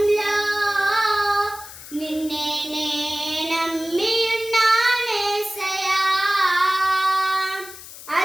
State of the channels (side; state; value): left; noise; hiss, 15 dB below the sound